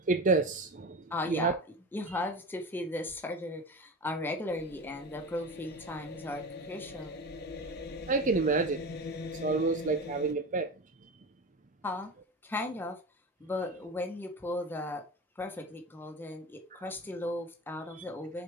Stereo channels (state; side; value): normal; both; correlation 0.28